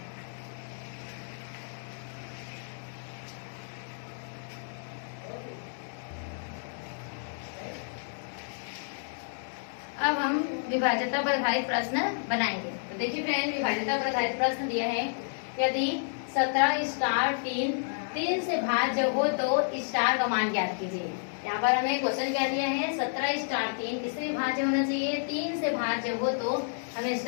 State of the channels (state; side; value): silent; right; digital silence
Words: अब हम विभाज्यता पर आधारित प्रश्न बनाएंगे। तो देखिए फ्रेंड, विभाज्यता पर आधारित प्रश्न दिया है, यदि 17 स्टार 3 से भाज्य हो तो स्टार का मान ज्ञात कीजिए। यहाँ पर हमें क्वेश्चन क्या दिया है, 17 स्टार 3 किससे भाज्य होना चाहिए, 3 से भाज्य हो तो हमें